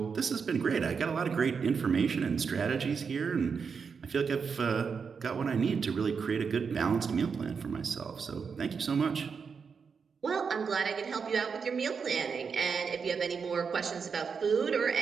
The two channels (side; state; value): left; quieter; 5.9 dB